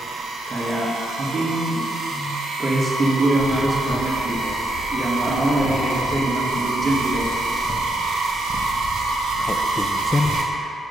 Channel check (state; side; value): normal; both; correlation 0.79